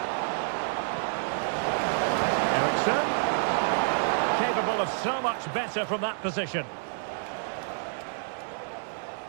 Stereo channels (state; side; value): silent; left; digital silence